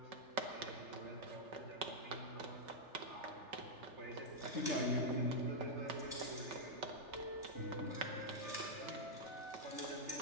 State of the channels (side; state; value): left; late; 3.4 ms